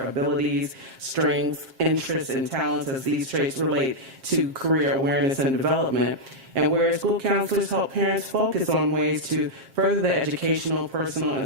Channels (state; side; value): late; left; 7.5 ms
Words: abilities, strengths, interests, and talents as these traits relate to career awareness and development, and whereas school counselors help parents focus on ways to further the educational, personal,